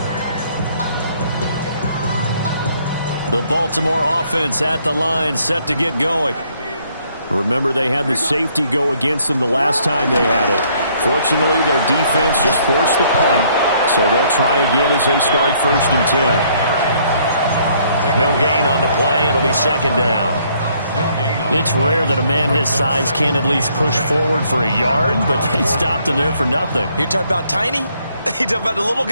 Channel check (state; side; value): inverted; both; correlation -0.66